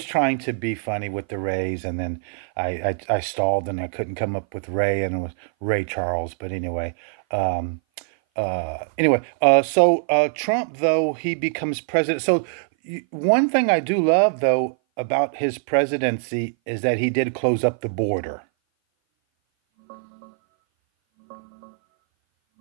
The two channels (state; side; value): silent; left; 58 dB below the other